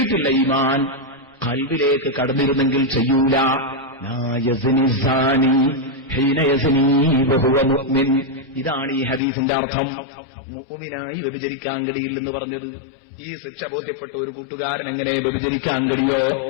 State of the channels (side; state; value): right; drops out; at 9.2 s